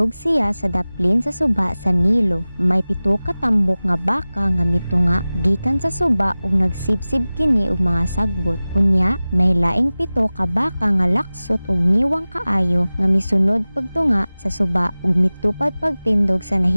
siya sa daplin sa suba sa Nilo. May 7 ka tambok nga baka nga mitunga gikan sa suba ug nagsibsib kini og mga sagbot. Unya, may laing 7 ka baka nga laksot ug niwang kaayo nga misunod pagtunga sa suba ug mitupad pagtindog sa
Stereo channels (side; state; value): both; inverted; correlation -0.97